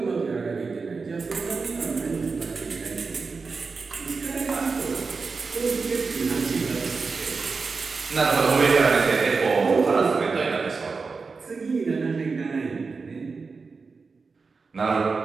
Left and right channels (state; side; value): quieter; left; 4.6 dB